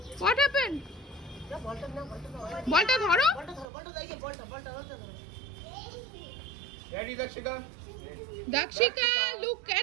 What happened? বলটা ধরো। Ready, Dakshika? দাক্ষিকা, look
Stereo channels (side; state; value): left; drops out; at 3.7 s